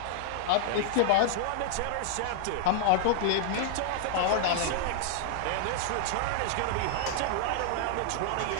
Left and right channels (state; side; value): different; both; correlation -0.01